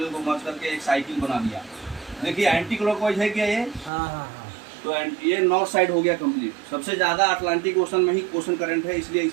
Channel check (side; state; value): left; drops out; at 3.9 s